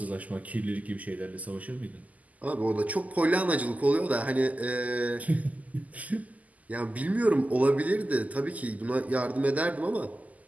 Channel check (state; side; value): late; left; 0.076 ms